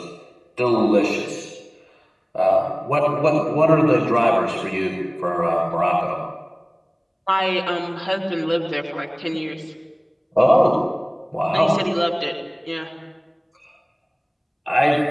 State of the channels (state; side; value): identical; both; correlation 1.00